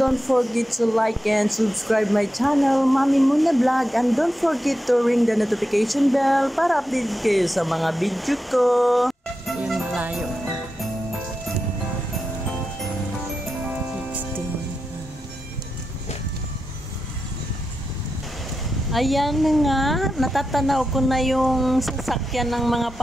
forget to like and subscribe my channel, Mami Muna Vlog, and don't forget to ring the notification bell para update kayo sa mga video ko. Ayan, malayo. 16. Ayan na nga, natatanaw ko na yung sasakyan ng mga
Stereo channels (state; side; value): normal; both; correlation 0.89